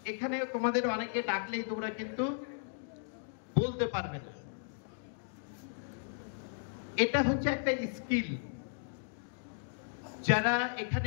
এখানে তোমাদের অনেকে ডাকলেই তোমরা কিন্তু বলতে পারবে না। এটা হচ্ছে একটা স্কিল। যারা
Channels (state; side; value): silent; right; digital silence